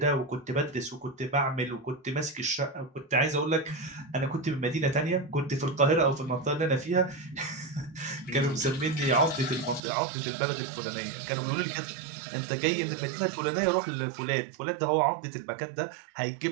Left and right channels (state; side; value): drops out; left; at 9.8 s